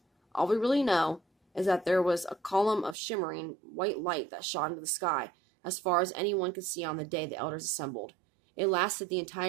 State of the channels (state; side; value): drops out; left; at 3.0 s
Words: All we really know is that there was a column of shimmering white light that shot into the sky, as far as anyone could see on the day the elders assembled. It lasted the